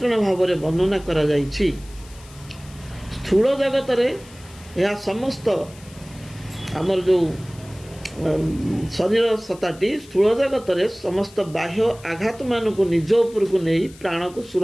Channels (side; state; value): left; noise; hiss, 22 dB below the sound